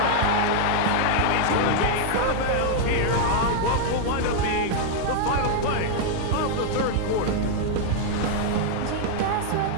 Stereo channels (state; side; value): different; both; correlation 0.00